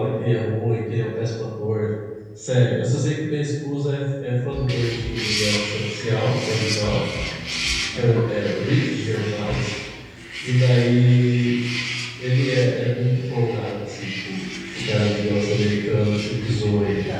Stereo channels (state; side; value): identical; both; correlation 1.00